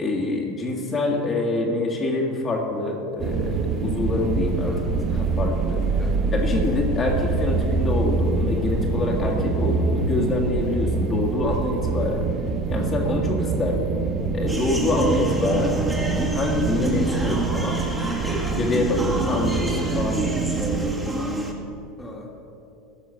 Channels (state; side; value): normal; both; correlation 0.45